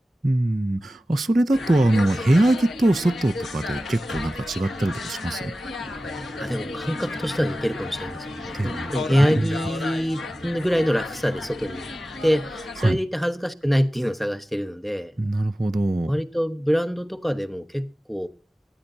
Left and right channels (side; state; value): both; normal; correlation 0.95